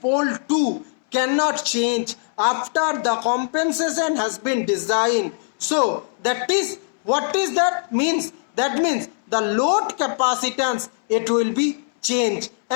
pole 2, cannot change after the compensation has been designed. So that is, what is that means? That means the load capacitance, it will be changed.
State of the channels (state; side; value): silent; right; 65 dB below the other